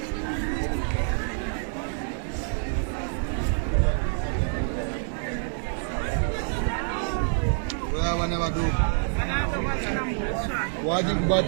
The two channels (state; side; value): silent; left; 60 dB below the other